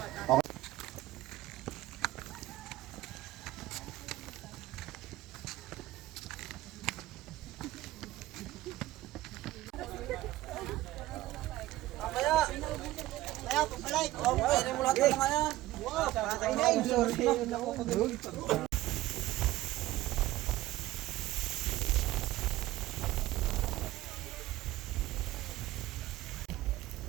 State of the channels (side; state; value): left; quieter; 16.5 dB